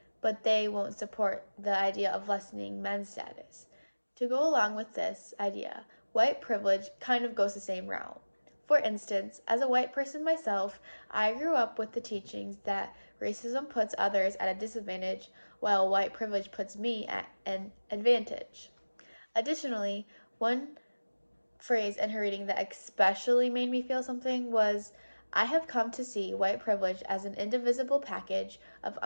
but they won't support the idea of lessening men's status. To go along with this idea, white privilege kind of goes the same route. For instance, as a white person myself, I grew up with the teachings that racism puts others at a disadvantage while white privilege puts me at an advantage. Additionally, one phrase in her reading that especially made me feel something was I have come to see white privilege as an indivisible package of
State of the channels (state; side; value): inverted; both; correlation -1.00